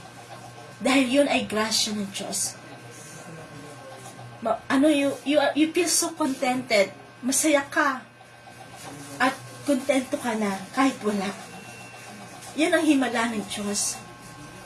Dahil yun ay grasya ng Diyos. You feel so contented. Masaya ka. At kontento ka na kahit wala. Yan ang himala ng Diyos.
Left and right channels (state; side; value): identical; both; correlation 1.00